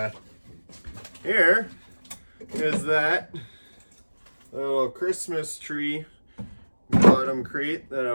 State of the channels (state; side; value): inverted; both; correlation -1.00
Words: here is that little Christmas tree bottom crate that I